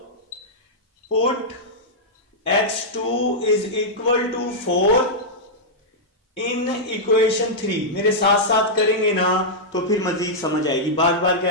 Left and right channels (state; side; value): normal; both; correlation -0.08